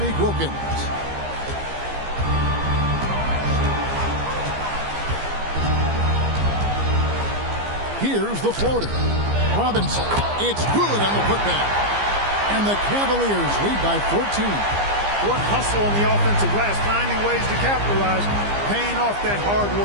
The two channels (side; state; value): left; late; 15 ms